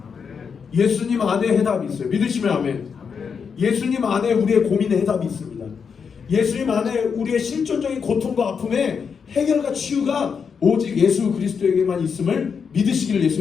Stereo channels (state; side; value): quieter; right; 6.2 dB